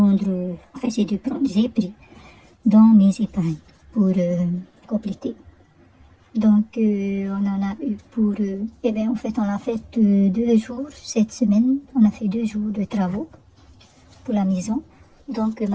dans mes épargnes pour compléter. Donc on en a eu pour, en fait on a fait 2 jours cette semaine. On a fait 2 jours de travaux pour la maison. Donc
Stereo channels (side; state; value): both; identical; correlation 1.00